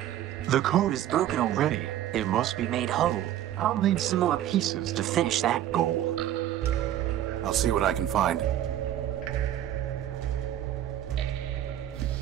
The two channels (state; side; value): quieter; left; 12.1 dB